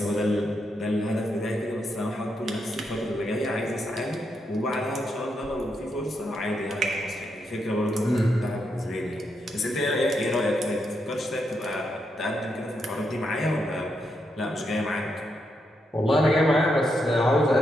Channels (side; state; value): both; normal; correlation 0.81